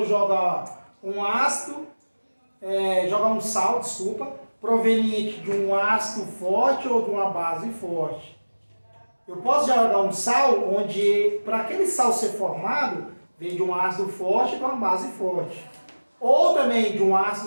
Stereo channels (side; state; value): both; inverted; correlation -1.00